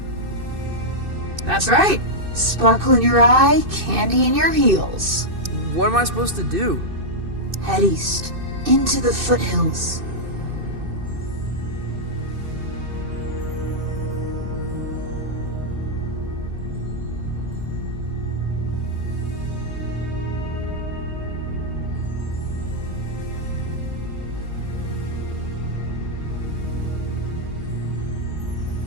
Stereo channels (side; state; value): left; late; 2.6 ms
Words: That's right. Sparkle in your eye, candy in your heels. What am I supposed to do? Head east, into the foothills.